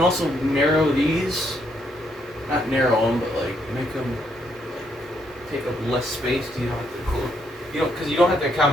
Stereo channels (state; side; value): normal; both; correlation 0.74